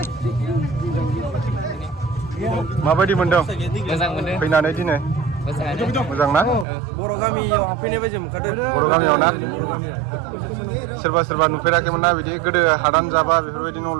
माबायदि मोनदों मोजां मोनदों फैनानै दिनै मोजां ना बर' गामियाव हाबफैनाय बायदि मोनखादों बर' गामियाव ना बर' गामियाव सोरबा नुफेराखैमोन ना बिदि गोदो हादान जाबा बेफोरबायदि न'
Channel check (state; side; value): drops out; left; at 6.7 s